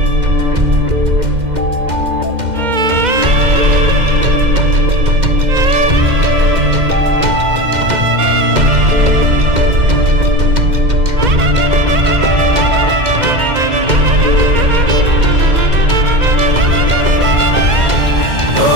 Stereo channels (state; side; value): late; left; 2.1 ms